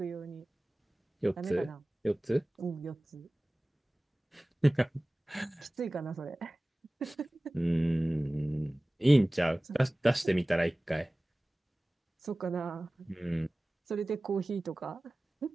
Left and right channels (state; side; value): normal; both; correlation 0.98